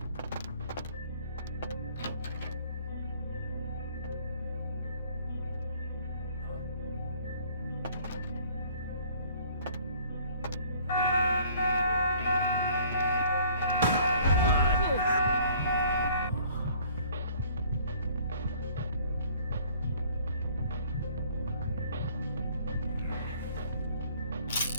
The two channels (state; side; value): inverted; both; correlation -0.55